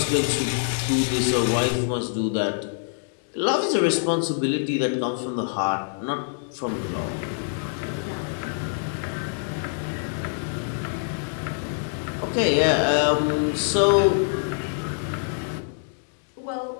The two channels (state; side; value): silent; right; digital silence